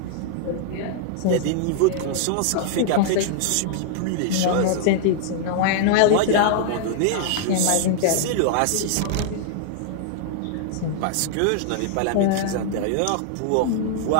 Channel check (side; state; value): both; different; correlation -0.01